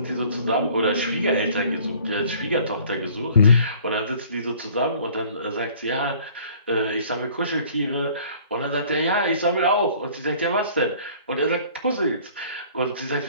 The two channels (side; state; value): both; inverted; correlation -0.52